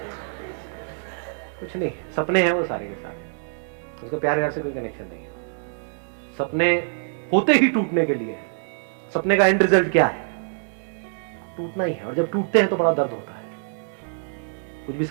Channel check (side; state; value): left; silent; digital silence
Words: कुछ नहीं, सपने हैं वो सारे के सारे, उसका प्यार व्यार से कोई कनेक्शन नहीं है। सपने होते ही टूटने के लिए, सपने का एंड रिजल्ट क्या है, टूटना ही है। और जब टूटते हैं तो बड़ा दर्द होता है। कुछ भी